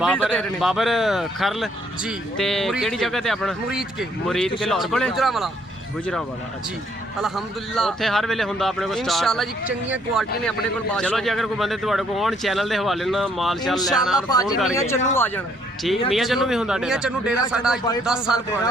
ਦੇ ਰਹੇ ਨੇ। ਬਾਬਰ ਖਰਲ ਜੀ ਤੇ ਕਿਹੜੀ ਜਗ੍ਹਾ ਤੇ ਆਪਣਾ? ਮੁਰੀਦ ਕੇ ਮੁਰੀਦ ਕੇ ਲਾਹੌਰ ਕੋਲੇ? ਗੁਜਰਾਂਵਾਲਾ। ਗੁਜਰਾਂਵਾਲਾ ਅੱਛਾ ਜੀ ਅਲਹਮਦੁਲਿਲਾ ਉੱਥੇ ਹਰ ਵੇਲੇ ਹੁੰਦਾ ਆਪਣੇ ਕੋਲ ਸਟਾਕ ਇਨਸ਼ਾਅੱਲਾ ਜੀ ਚੰਗੀਆਂ ਕੁਆਲਿਟੀ ਨੇ ਆਪਣੇ ਕੋਲ ਚਲੋ ਜੀ ਅਗਰ ਕੋਈ ਬੰਦੇ ਤੁਹਾਡੇ ਕੋਲ ਆਉਣ ਚੈਨਲ ਦੇ ਹਵਾਲੇ ਨਾਲ ਮਾਲ ਚੱਲ ਲੈਣਾ ਇਨਸ਼ਾਅੱਲਾ ਫੋਨ ਭਾਜੀ ਮੀਆਂ ਕਰਕੇ ਚੰਨੂ ਆ ਜਾਣਾ ਠੀਕ ਮੀਆਂ ਚੰਨੂ ਵੀ ਹੁੰਦਾ ਮੀਆਂ ਡੇਰਾ ਚੰਨੂ ਡੇਰਾ ਸਾਡਾ 10 ਸਾਲ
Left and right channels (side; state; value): both; normal; correlation 0.67